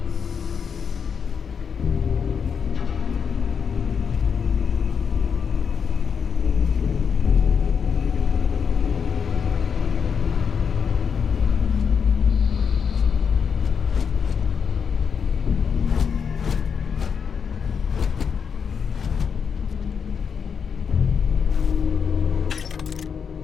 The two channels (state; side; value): quieter; right; 6.6 dB